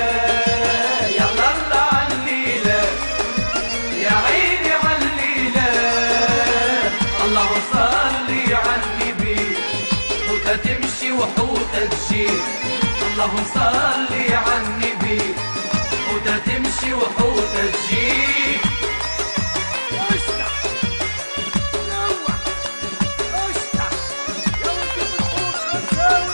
يا الله عالليلة يا عيني عالليلة. الله صلي عالنبي، حوتة تمشي وحوتة تجي. اللهم صل عالنبي حوتة تمشي وحوتة تجي. اشتع نوع اشتع يا ولد بالحوت خمسة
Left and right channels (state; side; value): inverted; both; correlation -1.00